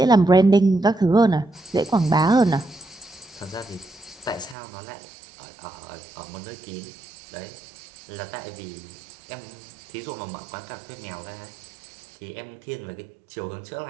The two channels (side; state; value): left; drops out; at 4.5 s